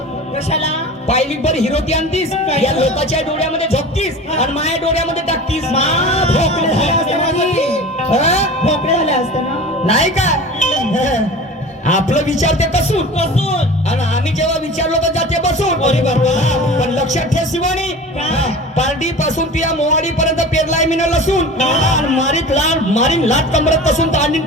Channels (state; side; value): normal; both; correlation 0.36